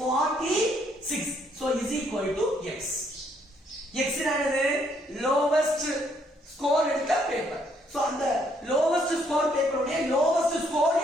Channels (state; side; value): normal; both; correlation 0.70